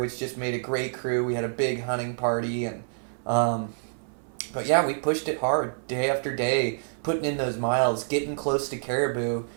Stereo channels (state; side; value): silent; left; 60 dB below the other